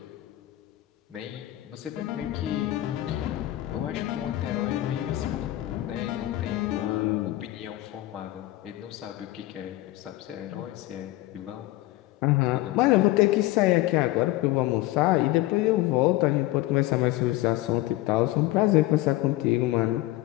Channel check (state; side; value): quieter; right; 17.0 dB